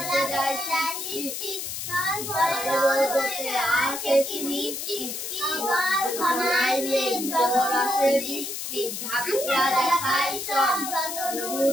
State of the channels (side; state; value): left; noise; hiss, 5 dB below the sound